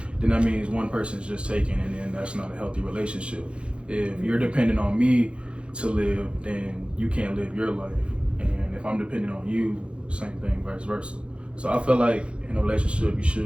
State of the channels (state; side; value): late; left; 0.058 ms